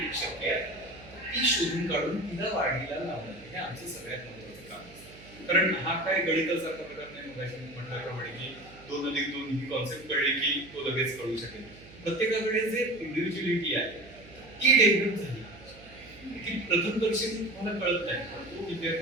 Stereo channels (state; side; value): noise; right; hum, 21 dB below the sound